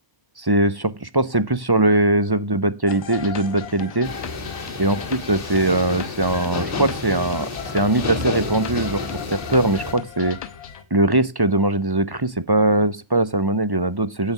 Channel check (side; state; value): left; late; 1.1 ms